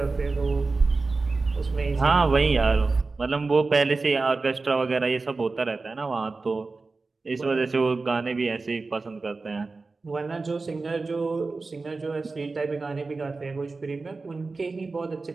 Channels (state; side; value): quieter; left; 3.8 dB